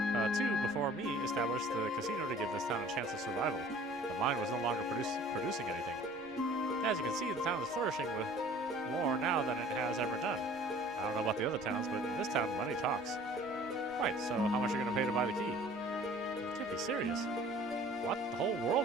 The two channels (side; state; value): right; noise; rumble, 26 dB below the sound